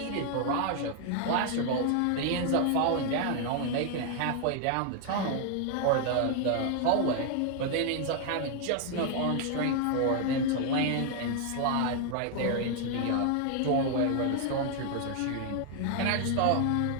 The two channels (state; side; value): different; both; correlation 0.00